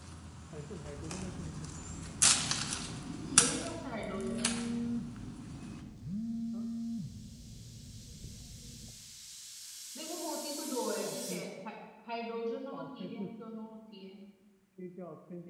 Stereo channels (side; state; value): both; identical; correlation 1.00